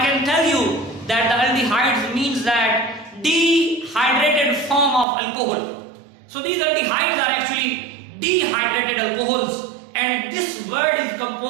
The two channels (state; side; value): drops out; left; at 5.1 s